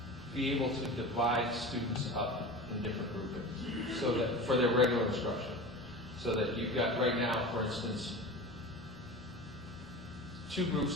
be able to divide students up in different groupings, so that for their regular instruction, so that you've got right now, for instance, 2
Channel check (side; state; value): both; normal; correlation 0.32